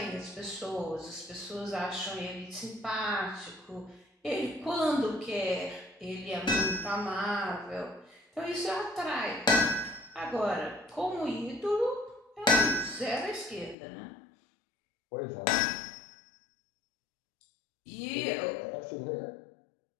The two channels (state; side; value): drops out; right; at 13.8 s